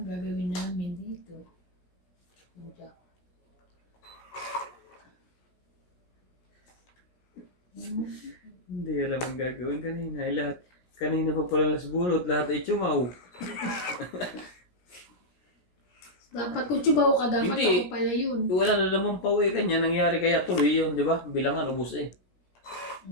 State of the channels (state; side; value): late; right; 17 ms